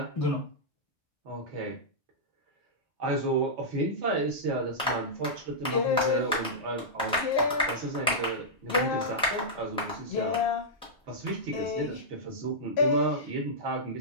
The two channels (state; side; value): normal; both; correlation -0.11